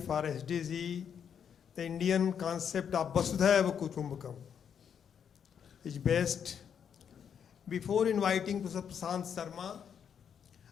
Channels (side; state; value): right; quieter; 7.9 dB